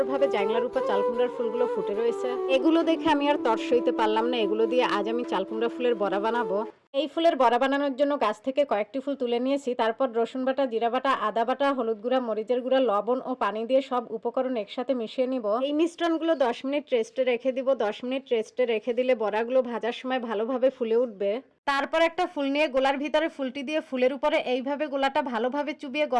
জাংলার উপর চালকুমড়ার ফুলগুলো ফুটে রয়েছে। এগুলো দেখে আমি আর তর সইতে পারলাম না। এগুলো দিয়ে আজ আমি চালকুমড়া ফুলের বড়া বানাবো। এই ফুলের বড়া বানানোর জন্য গাছ থেকে কয়েকটি ফুল তুলে নিয়েছি। তারপর রসুন বাটা, জিরা বাটা, আদা বাটা, হলুদ গুঁড়া, মরিচের গুঁড়া, লবণ ও পানি দিয়ে সব উপকরণ একসাথে মিশিয়ে নিব। এই মিশ্রণগুলো 10 মিনিট রেস্টে রেখে দিব। 10 মিনিট রেস্টে রেখে দিলে বড়াগুলো ভাজার সময় ভালোভাবে ফুলে উঠবে। তারপর একটা ফুল নিয়ে গোলার ভিতরে ফুলটি দিয়ে ফুলের উপরে এইভাবে গোলাটা ভালোভাবে চুবিয়ে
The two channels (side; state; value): both; identical; correlation 1.00